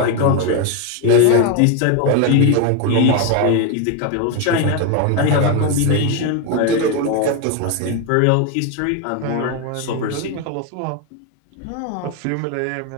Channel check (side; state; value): both; different; correlation 0.02